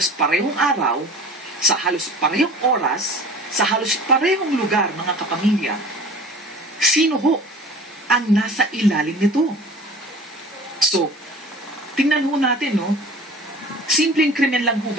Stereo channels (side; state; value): both; normal; correlation 0.42